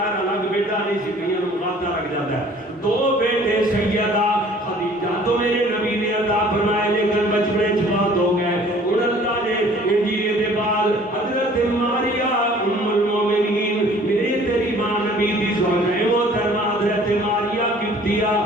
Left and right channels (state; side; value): normal; both; correlation 0.52